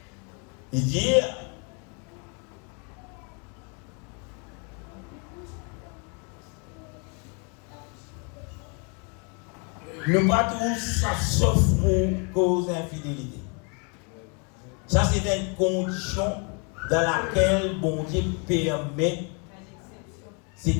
Il dit nous pas tous ça sauf pour cause d'infidélité. Ça c'est une condition dans laquelle bon Dieu permet,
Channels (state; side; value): quieter; right; 36.3 dB